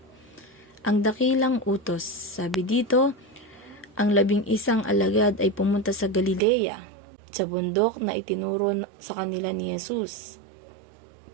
Ang dakilang utos, sabi dito, ang 11 alagad ay pumunta sa Galilea, sa bundok na itinuro sa kanila ni Jesus.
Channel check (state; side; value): drops out; left; at 6.4 s